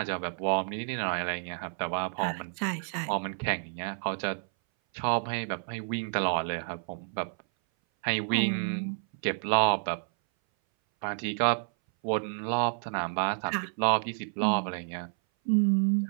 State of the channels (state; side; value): silent; left; 58 dB below the other